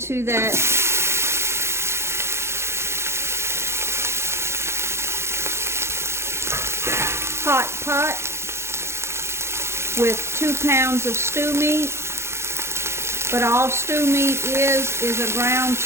that hot pot with 2 pounds of stew meat. But all stew meat is a ground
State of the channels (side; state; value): left; late; 0.13 ms